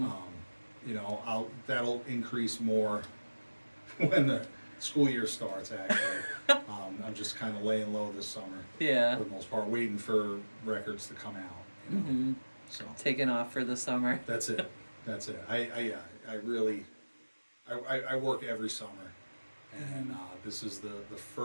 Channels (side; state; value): both; inverted; correlation -1.00